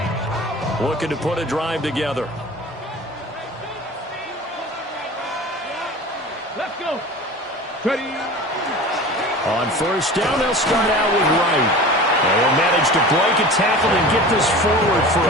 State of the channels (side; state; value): both; normal; correlation 0.37